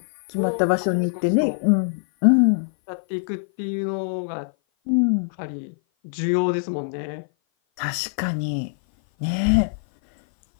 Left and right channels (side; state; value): right; silent; 56 dB below the other